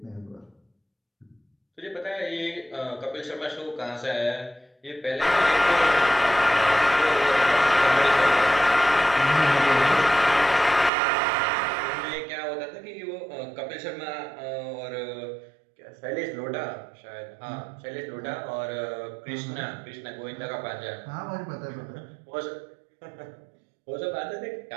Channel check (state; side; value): drops out; left; at 10.9 s